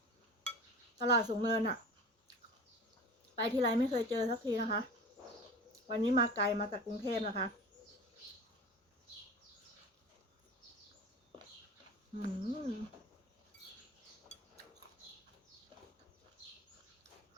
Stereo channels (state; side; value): normal; both; correlation 0.36